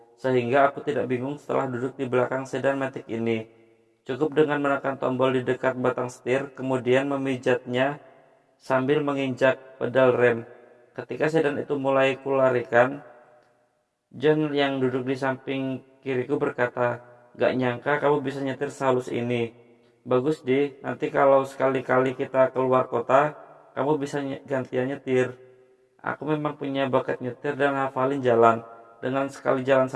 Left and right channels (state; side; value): identical; both; correlation 1.00